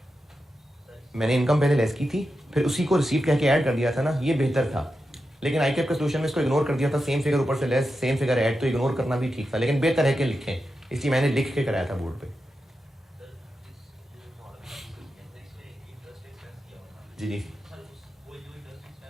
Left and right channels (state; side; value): normal; both; correlation 0.89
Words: मैंने इनकम पहले लेस की थी, फिर उसी को रिसीव कह के ऐड कर दिया था ना, ये बेहतर था। लेकिन ICAP के सोल्यूशन में इसको इग्नोर कर दिया था, सेम फिगर ऊपर से लेस, सेम फिगर ऐड, तो इग्नोर करना भी ठीक था, लेकिन बेहतर है कि लिखें, इसलिए मैंने लिख के कराया था बोर्ड पे। जी जी,